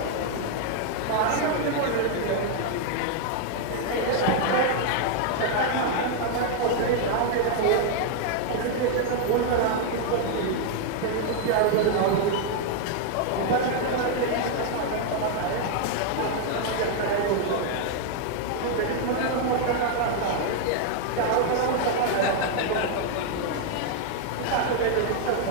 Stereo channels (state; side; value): different; both; correlation 0.00